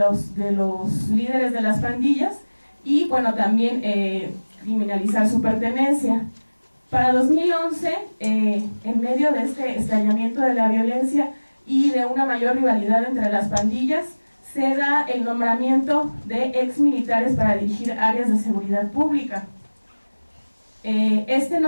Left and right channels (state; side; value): inverted; both; correlation -1.00